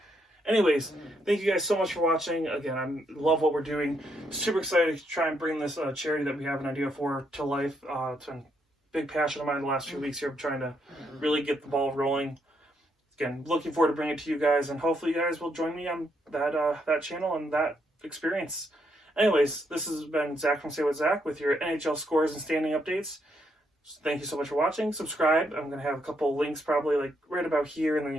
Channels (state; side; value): normal; both; correlation 0.76